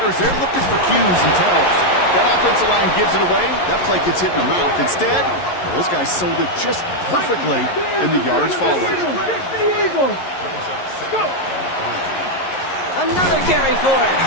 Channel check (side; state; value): right; late; 11 ms